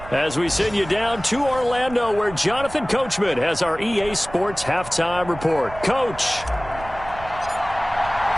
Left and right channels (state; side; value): noise; right; rumble, 15 dB below the sound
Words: as we send you down to Orlando where Jonathan Coachman has our EA Sports halftime report. Coach.